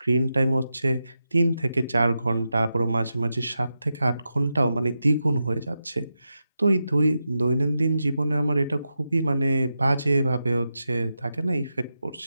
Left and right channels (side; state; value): both; inverted; correlation -0.89